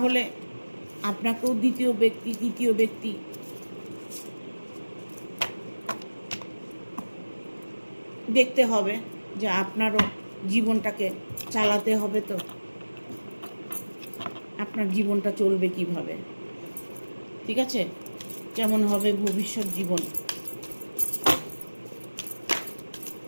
আপনাকেও দ্বিতীয় ব্যক্তি তৃতীয় ব্যক্তি দেখতে হবে, যে আপনারও জীবনটাকে চালাতে হবে। তো আপনার জীবনটা চলবে কিভাবে, ঠিক আছে, কেমন হবে ভবিষ্যৎ জীবন।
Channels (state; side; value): inverted; both; correlation -1.00